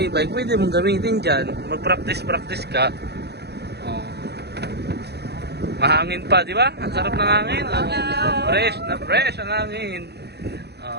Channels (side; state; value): left; late; 0.48 ms